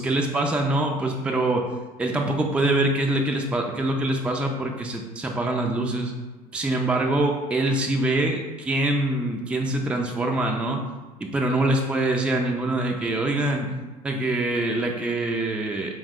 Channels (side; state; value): both; normal; correlation 0.61